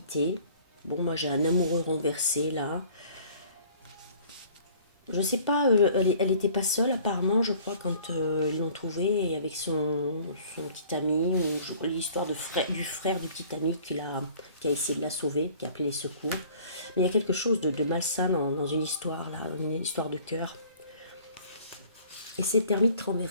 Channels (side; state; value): both; inverted; correlation -0.52